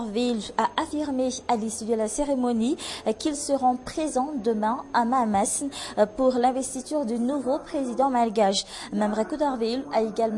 a affirmé à l'issue de la cérémonie qu'ils seront présents demain à Mahamas pour l'investiture du nouveau président malgache. Memre Coutoirville a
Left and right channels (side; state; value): both; identical; correlation 1.00